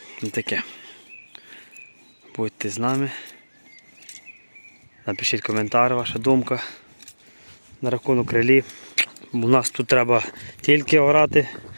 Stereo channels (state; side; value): inverted; both; correlation -1.00